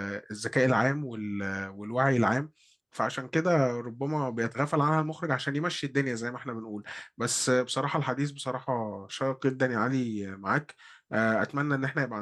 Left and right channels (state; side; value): identical; both; correlation 1.00